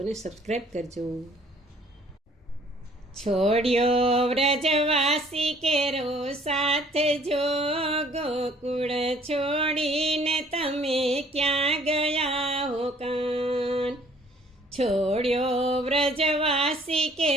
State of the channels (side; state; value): both; normal; correlation 0.58